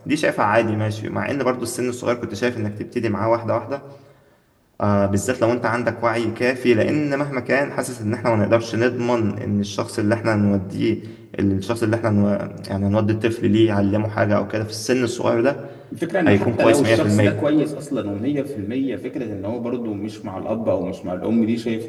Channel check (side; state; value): both; identical; correlation 1.00